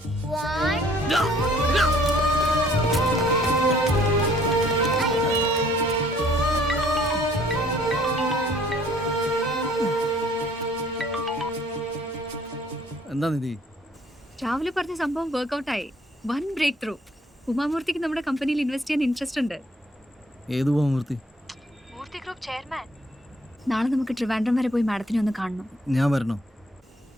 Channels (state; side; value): normal; both; correlation 0.60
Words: 1 എന്താ നിധി? രാവിലെ പറഞ്ഞ സംഭവം വർക്ക്ഔട്ടായി. One breakthrough. ഉമാമൂർത്തിക്ക് നമ്മുടെ കമ്പനിയിൽ ഇൻവെസ്റ്റ് ചെയ്യാൻ ഇൻട്രസ്റ്റ് ഉണ്ട്. ഏത് മൂർത്തി? മൂർത്തി ഗ്രൂപ്പ് ചെയർമാൻ. നാളെ നമുക്ക് ട്രിവാൻഡ്രം വരെ പോയി മാഡത്തിനെ ഒന്ന് കാണണം. ഞാൻ വരണോ?